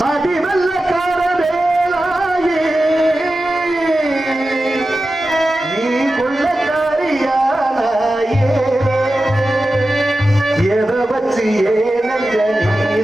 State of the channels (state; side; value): normal; both; correlation 0.93